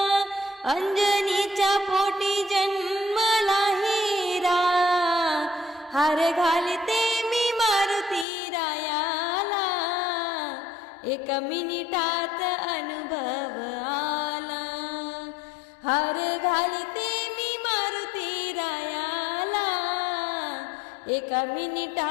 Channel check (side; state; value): right; drops out; at 8.2 s